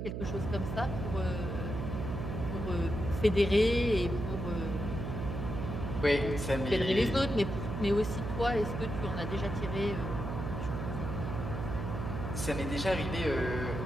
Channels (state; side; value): noise; right; hum, 4 dB below the sound